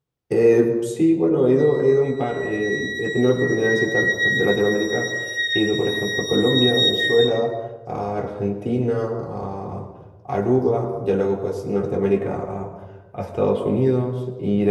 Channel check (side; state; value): both; identical; correlation 1.00